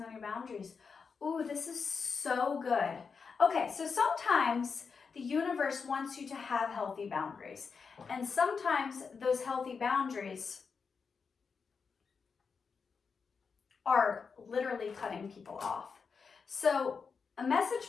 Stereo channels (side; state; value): right; quieter; 5.5 dB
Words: on your boundaries. Ooh, this is so good. Okay, so sometimes the universe wants you to have healthy boundaries. And sometimes those healthy boundaries are literally cutting people off. So a message